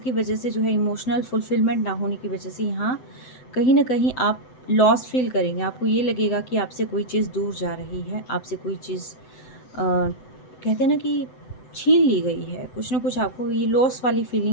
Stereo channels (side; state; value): right; late; 7.9 ms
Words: वजह से जो है इमोशनल फुलफिलमेंट ना होने की वजह से यहाँ कहीं ना कहीं आप लॉस फील करेंगे। आपको ये लगेगा कि आपसे कोई चीज़ दूर जा रही है, आपसे कोई चीज़ कहते हैं ना कि छीन ली गई है, कुछ ना कुछ आपको ये लॉस वाली